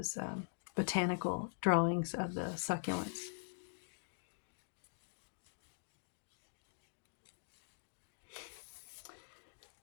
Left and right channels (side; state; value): right; silent; digital silence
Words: botanical drawings of the succulents.